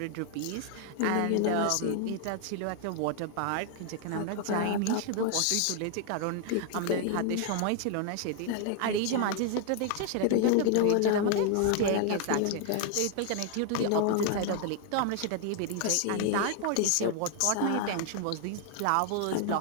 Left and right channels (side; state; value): both; different; correlation 0.00